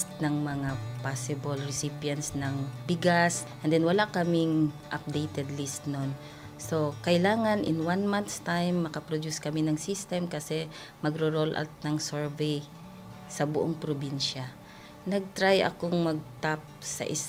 ng mga possible recipients ng bigas, and then wala kaming updated list nun. So kailangan in 1 month's time makaproduce kami ng system kasi magro-roll out ng survey sa buong probinsya. Nag-try akong mag-tap sa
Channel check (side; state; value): both; identical; correlation 1.00